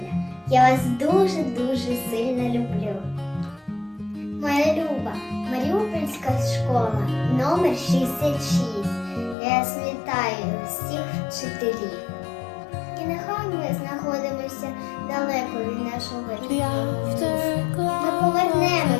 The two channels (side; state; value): right; drops out; at 9.3 s